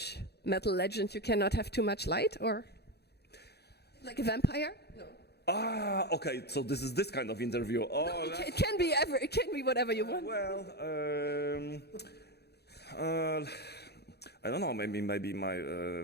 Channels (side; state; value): right; late; 0.48 ms